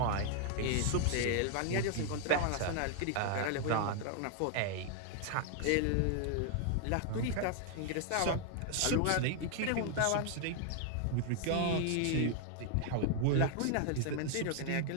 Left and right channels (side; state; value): both; different; correlation 0.00